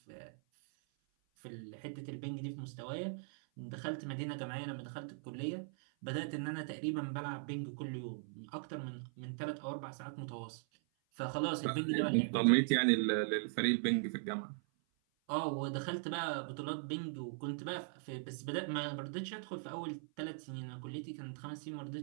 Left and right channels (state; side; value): silent; left; 51 dB below the other